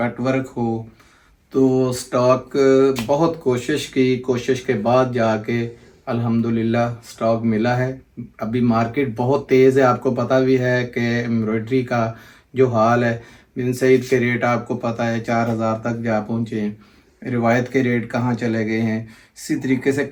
वर्क हो, तो स्टॉक बहुत कोशिश के बाद जाके अल्हम्दुलिल्लाह स्टॉक मिला है। अभी मार्केट बहुत तेज़ है, आपको पता भी है कि एम्ब्रॉयडरी का जो हाल है। बिन सईद के रेट आपको पता है 4,000 तक जा पहुँचे हैं, रिवायत के रेट कहाँ चले गए हैं। इसी तरीके से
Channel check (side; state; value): both; identical; correlation 1.00